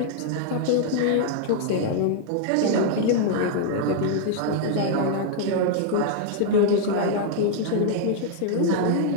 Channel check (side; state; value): both; different; correlation -0.01